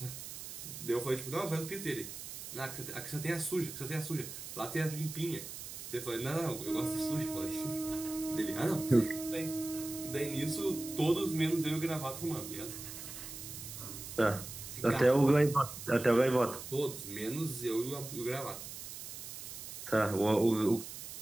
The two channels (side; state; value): right; noise; hiss, 10 dB below the sound